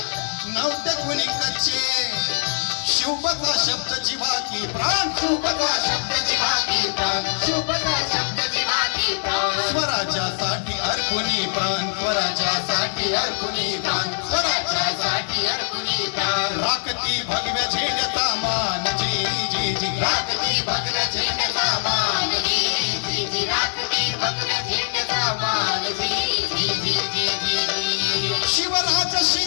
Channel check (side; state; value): right; silent; 63 dB below the other